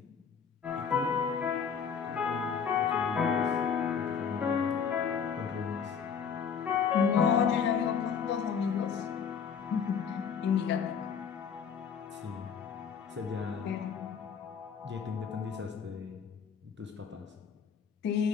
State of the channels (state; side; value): quieter; right; 6.8 dB